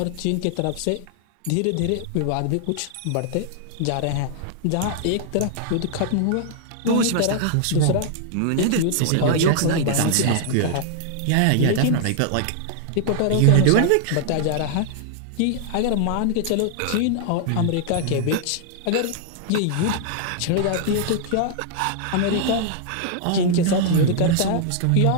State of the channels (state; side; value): different; both; correlation -0.01